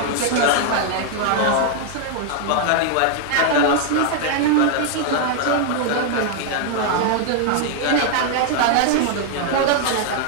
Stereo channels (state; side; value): different; both; correlation 0.00